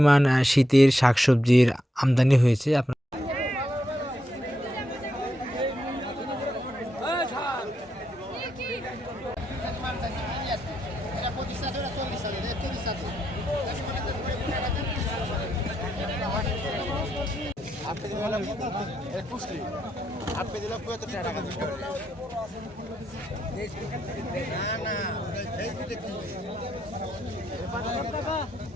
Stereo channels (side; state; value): both; normal; correlation 0.81